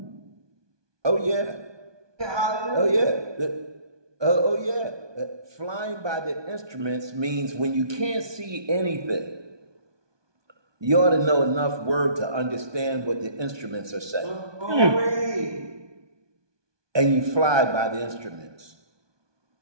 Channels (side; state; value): left; late; 1.2 ms